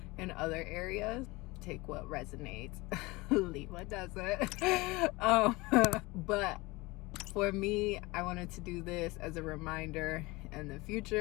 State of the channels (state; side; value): quieter; right; 22.8 dB